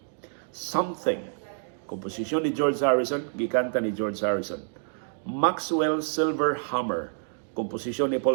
Something, komposisyon ni George Harrison, gikanta ni George Harrison. Maxwell Silver Hammer, komposisyon ni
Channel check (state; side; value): silent; left; digital silence